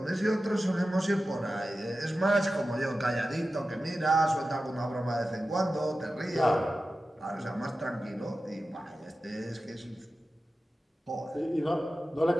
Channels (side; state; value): both; normal; correlation 0.93